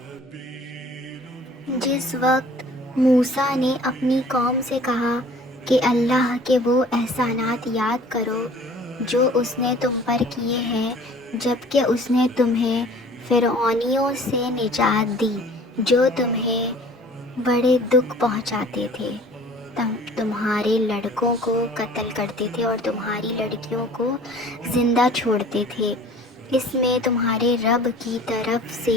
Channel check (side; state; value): both; normal; correlation 0.49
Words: جس وقت موسیٰ نے اپنی قوم سے کہا کہ اللہ کے وہ احسانات یاد کرو جو اس نے تم پر کیے ہیں جبکہ اس نے تمہیں فرعونیوں سے نجات دی جو تمہیں بڑے دکھ پہنچاتے تھے، تمہارے لڑکوں کو قتل کرتے تھے اور تمہاری لڑکیوں کو زندہ چھوڑتے تھے، اس میں تمہارے رب کی طرف